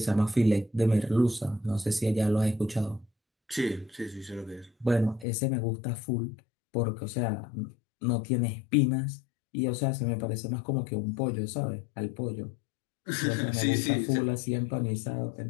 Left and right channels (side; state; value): right; drops out; at 5.2 s